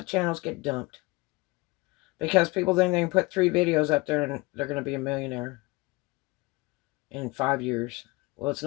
channels get dumped. Because people think they can put 3 videos up there and they're going to be a millionaire in 5 years. Well, it's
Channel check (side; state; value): right; quieter; 24.2 dB